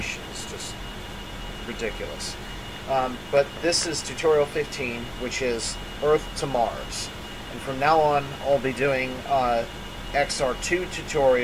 is just ridiculous. But this is tutorial 15, which is Earth to Mars. And from now on, I'll be doing XR-2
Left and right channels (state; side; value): identical; both; correlation 1.00